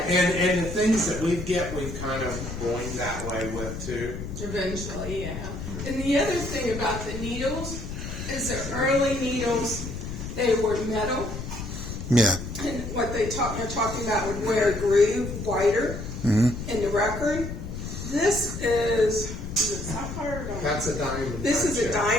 and the things that we've kind of going that way with too. Eventually, yeah. And the other thing about the needles is the early needles, they were metal. Yeah. And what they're talking about would wear a groove wider in the record. This is it sapphire or diamond? That's a diamond. This is a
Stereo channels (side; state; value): left; noise; rumble, 7 dB below the sound